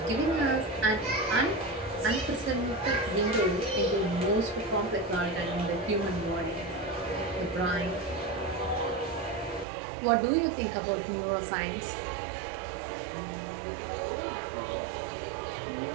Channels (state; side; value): drops out; left; at 9.7 s